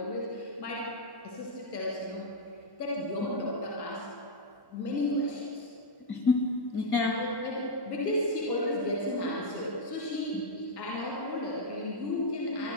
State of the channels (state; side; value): late; right; 1.1 ms